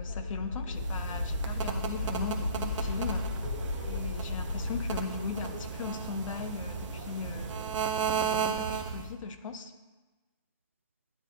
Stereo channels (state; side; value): inverted; both; correlation -0.39